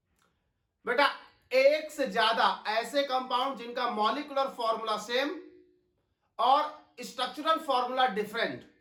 बेटा एक से ज्यादा ऐसे कंपाउंड जिनका मॉलिक्यूलर फॉर्मूला सेम और स्ट्रक्चरल फॉर्मूला डिफरेंट,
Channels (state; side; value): identical; both; correlation 1.00